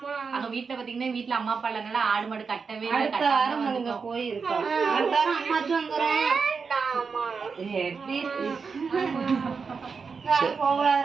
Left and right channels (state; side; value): quieter; left; 5.3 dB